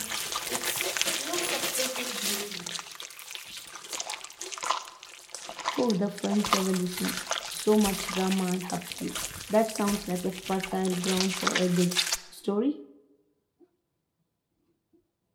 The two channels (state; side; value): identical; both; correlation 1.00